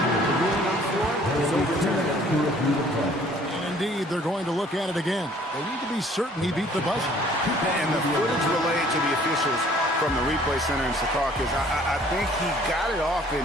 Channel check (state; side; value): normal; both; correlation 0.56